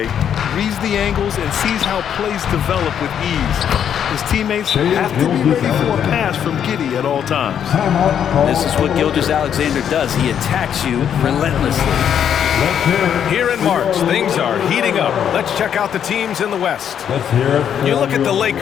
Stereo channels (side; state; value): right; quieter; 8.8 dB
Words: Reads the angles and sees how plays develop with ease. His teammates have to be ready for a pass from Giddey at all times. This is what Gilgeous-Alexander does. He attacks you relentlessly. Here in March, things are heating up. Let's check out the teams in the West. You look at the